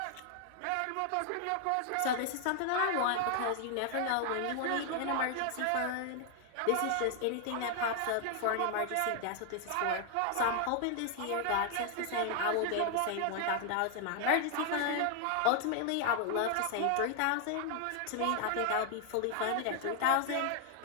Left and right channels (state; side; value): different; both; correlation 0.00